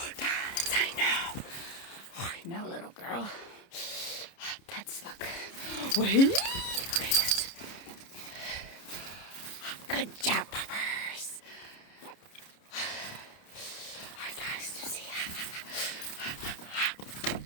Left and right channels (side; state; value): right; late; 30 ms